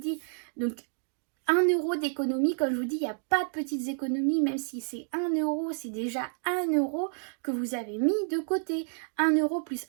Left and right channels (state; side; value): silent; left; digital silence